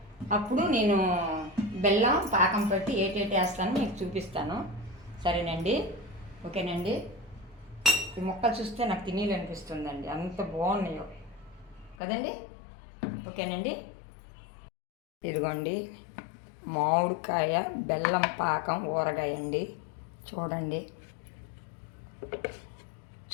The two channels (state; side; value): drops out; right; at 12.0 s